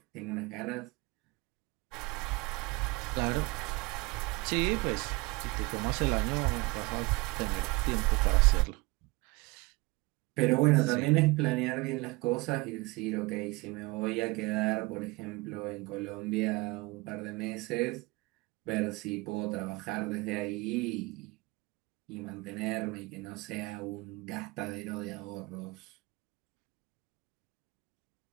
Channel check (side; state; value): left; quieter; 24.1 dB